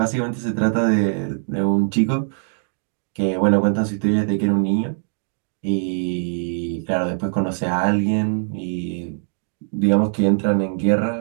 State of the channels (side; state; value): left; silent; digital silence